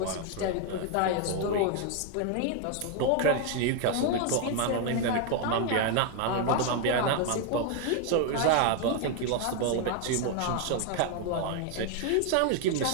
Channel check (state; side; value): different; both; correlation 0.01